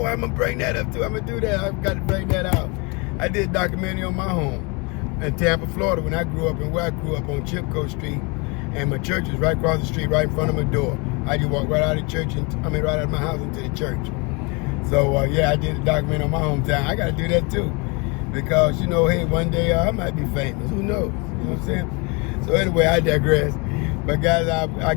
I'm gonna bring that up too. I'm gonna do that. I've got to bring that out. I did a documentary on my home in Tampa, Florida, when I grew up, and where I grew up on Chipco Street, and my church was right across the street, right in front of my door. I just walked right out of church, right out of my house into the church. So yeah, I did a documentary on my hometown. I gotta do that too, because you know, hey, one day I might be famous. Who knows? You know what I'm saying? So anyway, I digress. But guys, I'll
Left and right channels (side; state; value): right; quieter; 29.7 dB